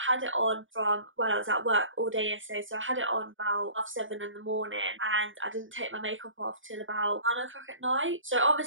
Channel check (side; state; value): left; late; 0.57 ms